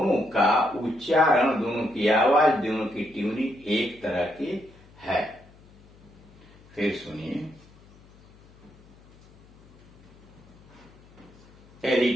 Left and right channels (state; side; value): noise; left; hum, 26 dB below the sound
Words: का उच्चारण, दोनों की आवाज, दोनों की ट्यूनिंग एक तरह की है। फिर सुनिए,